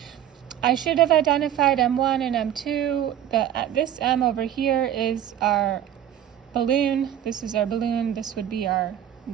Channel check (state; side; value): quieter; left; 10.7 dB